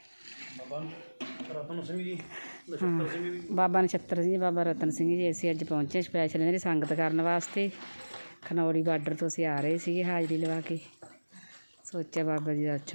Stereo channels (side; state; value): both; inverted; correlation -1.00